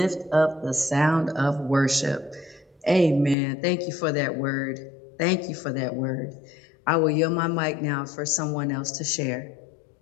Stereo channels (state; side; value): drops out; right; at 3.4 s